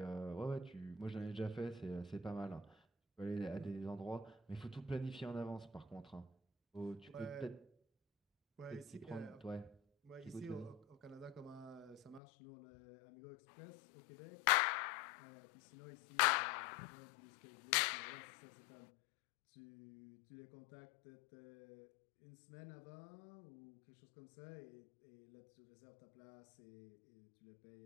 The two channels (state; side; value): drops out; right; at 12.2 s